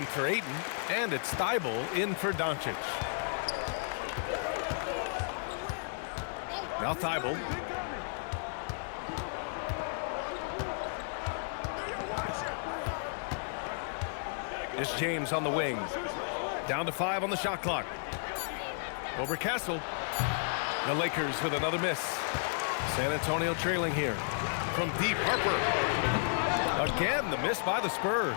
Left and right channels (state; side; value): silent; right; digital silence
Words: for Ayton, and it's Thibault in for Doncic. Now Thibault. It's James on the wing. Down to 5 on the shot clock. Over Castle. The Lakers with another miss. San Antonio trailing here. From deep, Harper. Again, the miss by the Spurs.